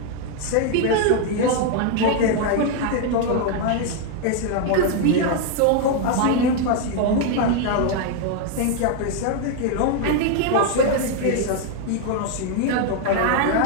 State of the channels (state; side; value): different; both; correlation 0.01